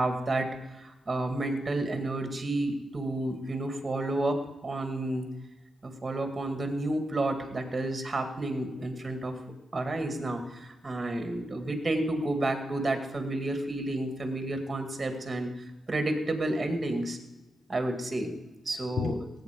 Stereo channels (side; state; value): both; normal; correlation 0.87